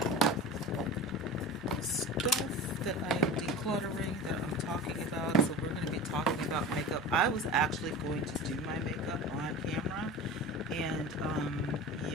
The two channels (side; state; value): both; normal; correlation 0.32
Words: Stuff that I am decluttering that I'm talking about. So we're going to be talking about makeup. I was actually going to do my makeup on camera, and